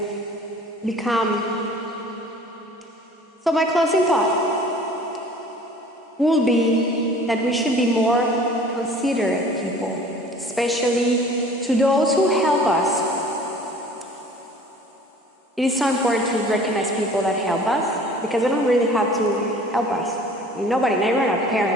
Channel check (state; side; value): normal; both; correlation 0.47